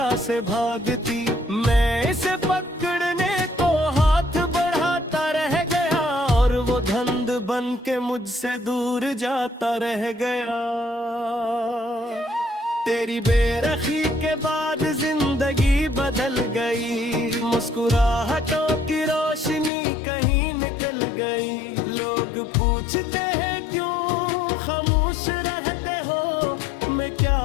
से भागती। मैं इसे पकड़ने को हाथ बढ़ाता रह गया और वो धंध बन के मुझसे दूर जाता रह गया। तेरी बेरखी के बाद जिंदगी बदल गई, मुस्कुराहटों की रोशनी कहीं निकल गई। लोग पूछते हैं क्यों खामोश रहते हो, मैं क्या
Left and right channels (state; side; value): drops out; right; at 19.7 s